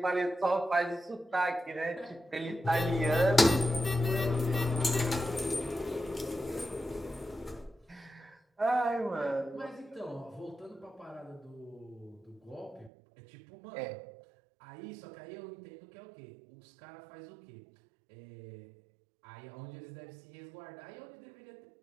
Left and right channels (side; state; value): left; drops out; at 12.9 s